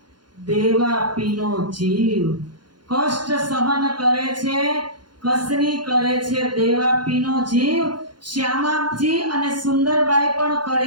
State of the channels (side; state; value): left; late; 0.71 ms